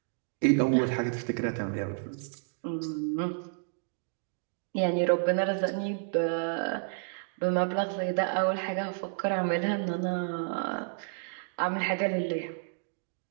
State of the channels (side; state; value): left; silent; digital silence